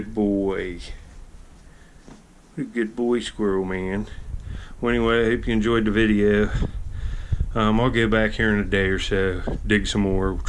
boy. What a good boy, Squirrel Man. Well, anyway, I hope you enjoyed the video. I'll go back here in a day or so, dig some more,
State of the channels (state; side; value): identical; both; correlation 1.00